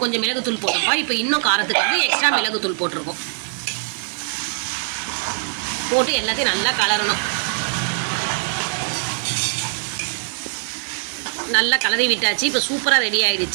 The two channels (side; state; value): left; silent; digital silence